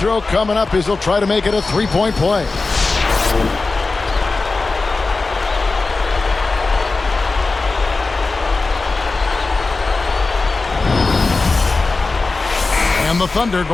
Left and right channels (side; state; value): right; quieter; 3.7 dB